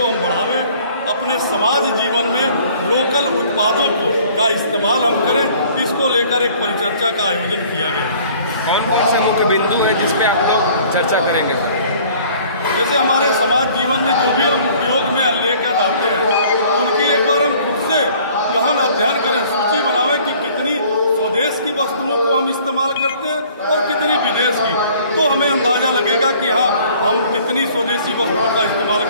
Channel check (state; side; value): inverted; both; correlation -0.54